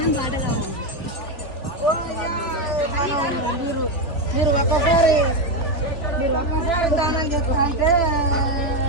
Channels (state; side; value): late; right; 3.4 ms